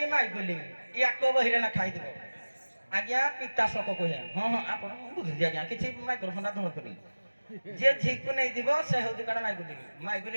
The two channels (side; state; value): both; inverted; correlation -1.00